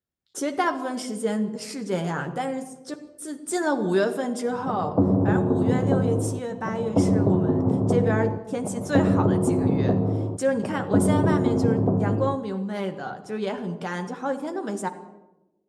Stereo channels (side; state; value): both; identical; correlation 1.00